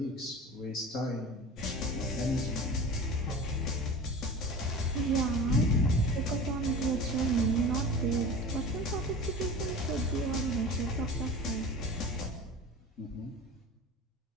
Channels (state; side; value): normal; both; correlation 0.35